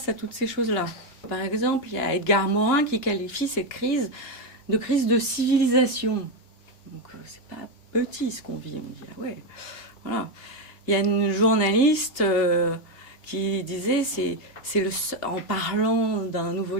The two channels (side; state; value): right; late; 3.4 ms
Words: à toutes ces choses-là. Par exemple, il y a Edgar Morin qui qualifie cette crise de civilisation. Donc, c'est pas petit ce qu'on vit. On dit, ah ouais, voilà. Il y a une journaliste qui disait, en parlant d'un nouveau